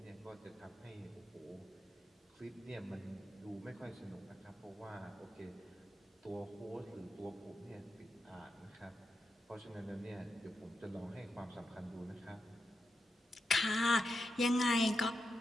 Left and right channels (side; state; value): both; normal; correlation 0.87